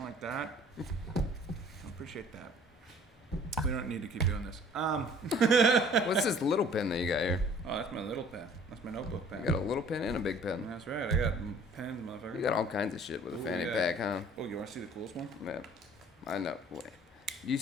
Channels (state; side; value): normal; both; correlation 0.52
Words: like that. I appreciate that. We don't need to keep doing this. What's this little pen that you got here? Oh, that's my little pen. That's my notebook pen. You got a little pen and a big pen. That's right. I got pens, motherfucker. You got all kinds of shit with a Ooh, fanny yeah. pack, huh? Oh, you want to see the coolest one? Yeah. I know. Wait.